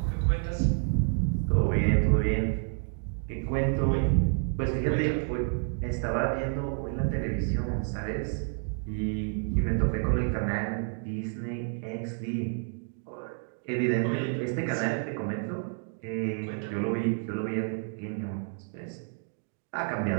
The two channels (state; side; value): silent; left; 56 dB below the other